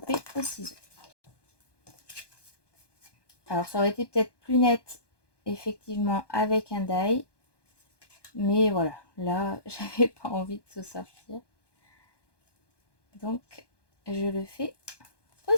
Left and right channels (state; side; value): late; right; 1.2 ms